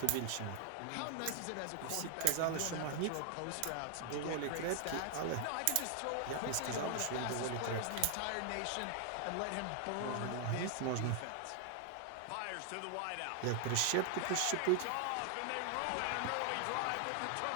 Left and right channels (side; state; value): both; different; correlation 0.00